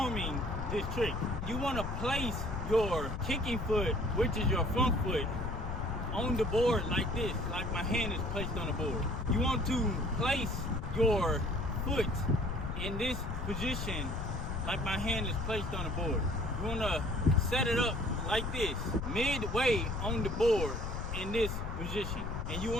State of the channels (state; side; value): noise; left; rumble, 4 dB below the sound